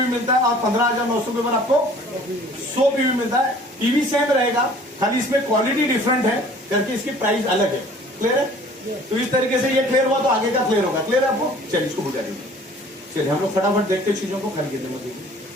मिलता है और 15,900 के ऊपर आपको 100 पीवी मिलता है। पीवी सेम रहेगा, खाली इसमें क्वालिटी डिफरेंट है करके इसकी प्राइस अलग है। क्लियर है? तो इस तरीके से ये क्लियर हुआ तो आगे का क्लियर होगा। क्लियर है आपको? चलिए इसको बुझा दीजिए। चलिए हम लोग फटाफट देखते चीजों को, खाली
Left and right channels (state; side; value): normal; both; correlation 0.51